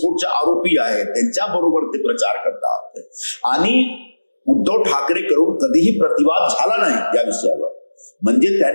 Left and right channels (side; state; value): both; inverted; correlation -1.00